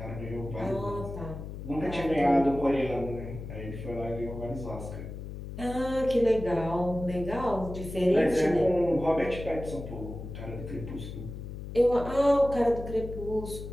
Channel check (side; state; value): left; noise; hum, 9 dB below the sound